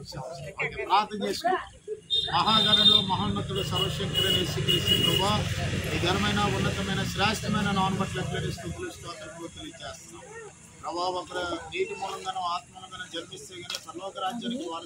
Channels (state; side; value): identical; both; correlation 1.00